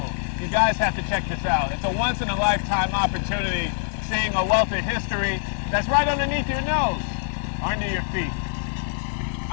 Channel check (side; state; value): right; silent; digital silence